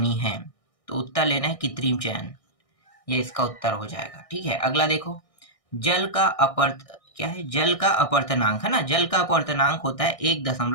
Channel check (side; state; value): right; late; 1.6 ms